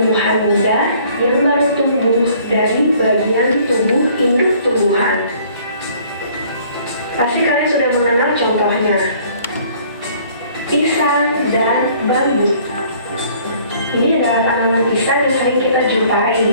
muda yang baru tumbuh dari bagian tubuh induk tumbuhan. Pasti kalian sudah mengenal contohnya. Pisang dan bambu. Ini adalah tanaman pisang yang sering kita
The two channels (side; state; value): both; inverted; correlation -0.57